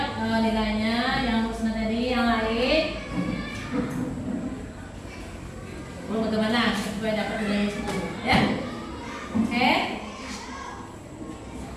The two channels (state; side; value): identical; both; correlation 1.00